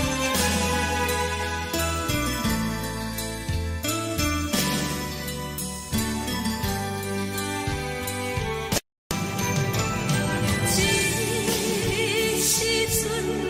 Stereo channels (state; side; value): identical; both; correlation 1.00